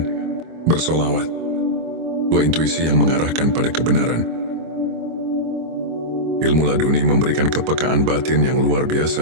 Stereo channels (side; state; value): left; late; 25 ms